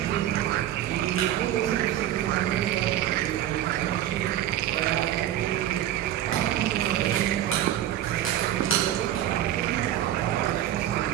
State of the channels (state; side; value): quieter; left; 12.3 dB